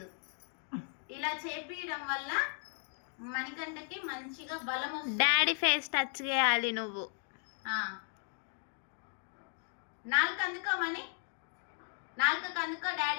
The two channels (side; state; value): right; silent; 54 dB below the other